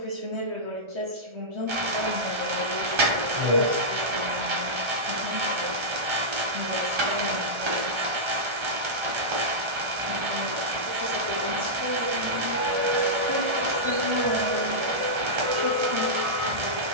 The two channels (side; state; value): left; late; 1.4 ms